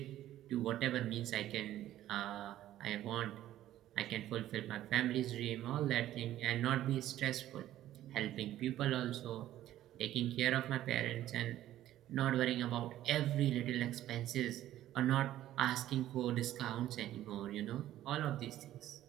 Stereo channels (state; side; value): quieter; left; 13.3 dB